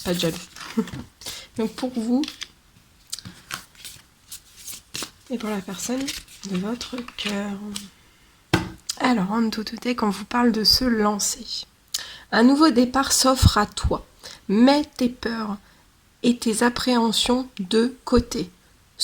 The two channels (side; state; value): both; identical; correlation 1.00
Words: pas de jaloux. Donc pour vous et pour la personne de votre cœur. Alors en autotech, on vous parle de se lancer. Un nouveau départ s'offre à toi. Mets tes peurs et tes appréhensions de côté.